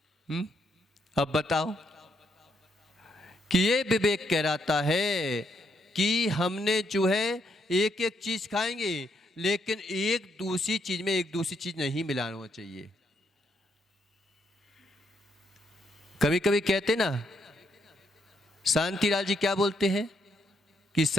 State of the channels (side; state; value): both; normal; correlation 0.76